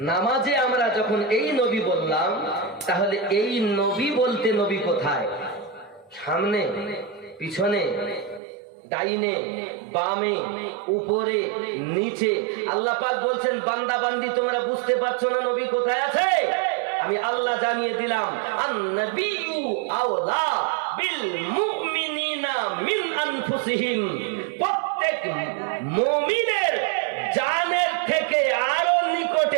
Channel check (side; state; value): left; drops out; at 8.4 s